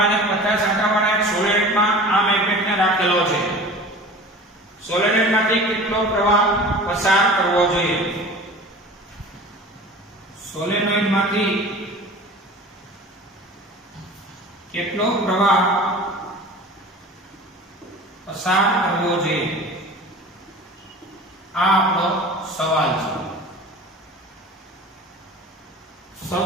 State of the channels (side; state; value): both; normal; correlation 0.39